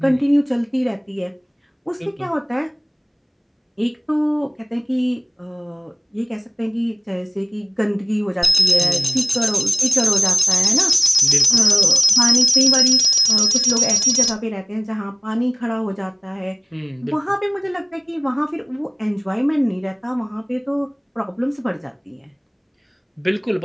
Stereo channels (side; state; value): both; identical; correlation 1.00